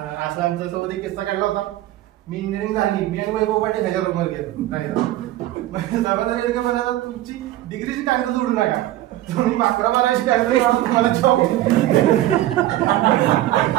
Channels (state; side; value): quieter; left; 14.8 dB